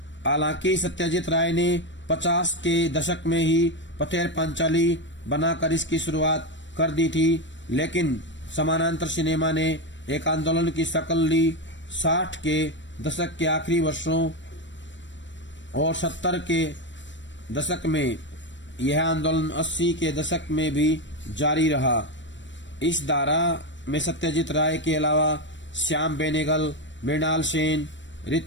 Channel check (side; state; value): right; late; 0.53 ms